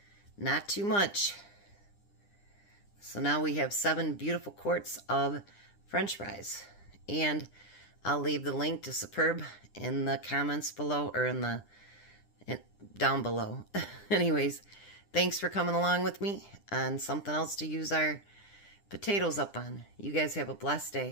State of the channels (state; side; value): late; right; 9.9 ms